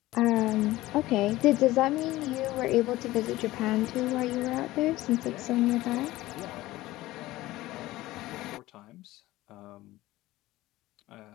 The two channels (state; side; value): quieter; right; 17.4 dB